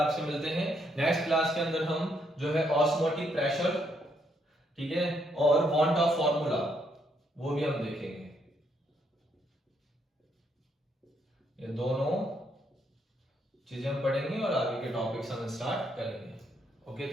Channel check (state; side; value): normal; both; correlation 0.74